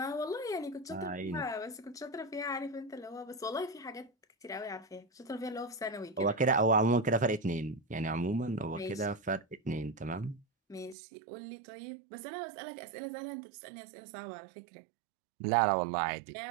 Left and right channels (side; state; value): left; drops out; at 11.0 s